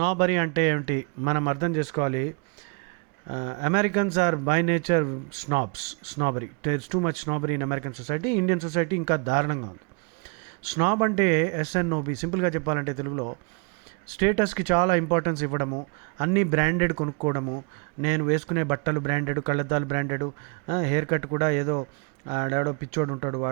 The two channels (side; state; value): left; quieter; 34.9 dB